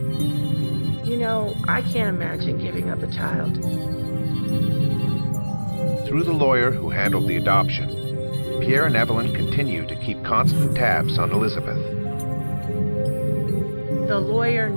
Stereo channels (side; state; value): both; inverted; correlation -1.00